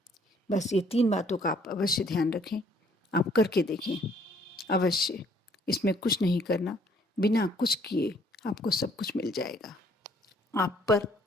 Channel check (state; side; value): normal; both; correlation 0.62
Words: बस ये 3 बातों का आप अवश्य ध्यान रखें, आप करके देखें अवश्य। इसमें कुछ नहीं करना, बिना कुछ किए आपको सब कुछ मिल जाएगा। आप पर